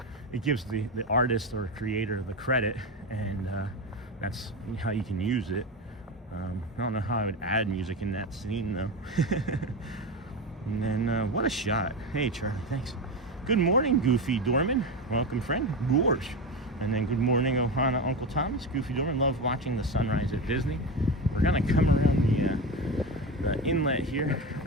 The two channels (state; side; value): normal; both; correlation 0.20